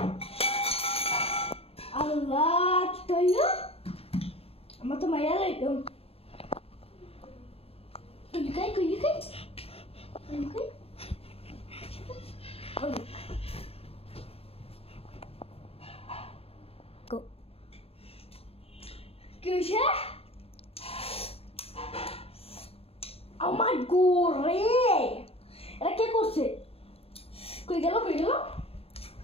আল্লাহ, কি তৈল? আমার তো মাইয়া লাগলো। লুকাই কই, লুকাই লুকাই। কি হয়েছে? আমার গোরে, এটা কে করছে? কই গেল, কই গেল?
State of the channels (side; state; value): right; late; 0.28 ms